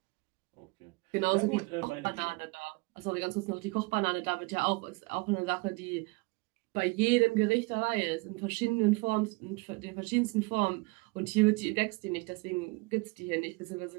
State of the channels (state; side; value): quieter; left; 26.1 dB